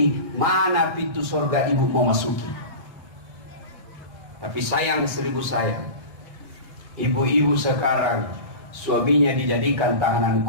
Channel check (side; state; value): left; late; 1.6 ms